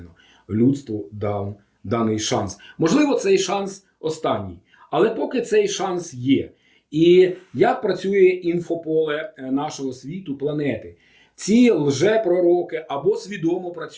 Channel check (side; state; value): both; identical; correlation 1.00